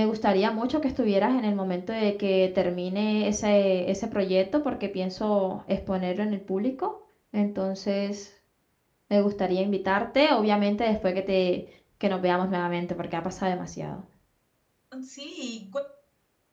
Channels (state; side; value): identical; both; correlation 1.00